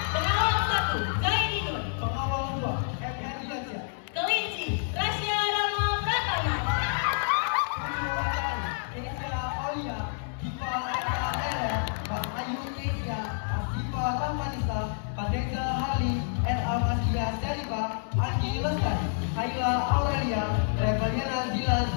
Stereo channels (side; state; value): right; silent; 59 dB below the other